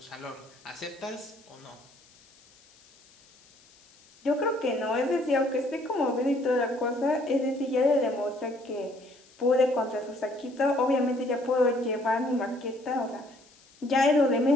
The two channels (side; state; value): left; noise; hiss, 28 dB below the sound